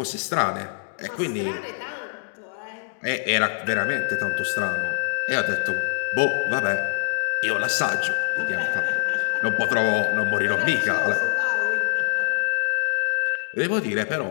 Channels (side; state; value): right; silent; 63 dB below the other